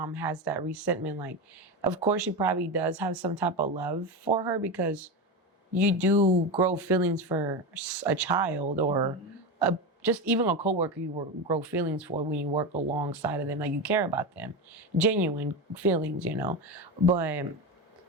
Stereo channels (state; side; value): normal; both; correlation 0.18